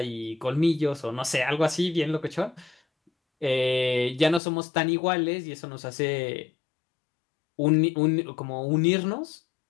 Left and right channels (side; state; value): right; drops out; at 4.4 s